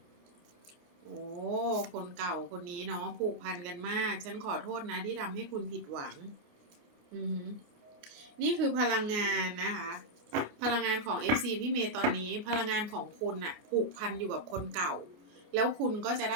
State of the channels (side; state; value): left; late; 28 ms